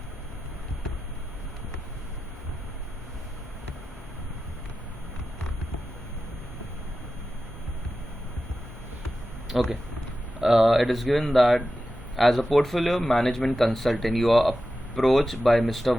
Okay, it is given that as a portfolio management consultant you are approached by Mr.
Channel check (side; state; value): both; normal; correlation 0.92